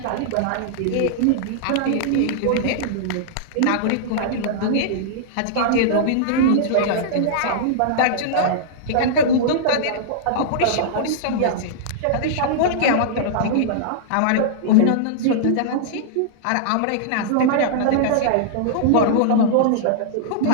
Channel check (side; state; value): both; different; correlation -0.02